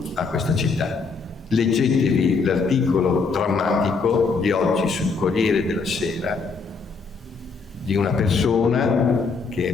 a questa città. Leggetevi l'articolo drammatico di oggi sul Corriere della Sera di una persona che è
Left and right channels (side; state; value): right; quieter; 4.6 dB